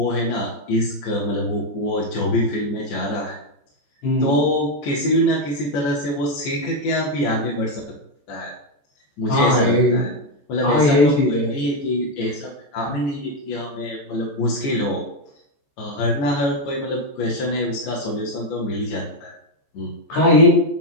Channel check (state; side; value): late; right; 14 ms